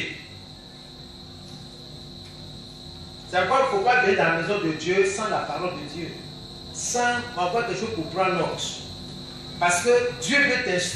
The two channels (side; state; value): both; identical; correlation 1.00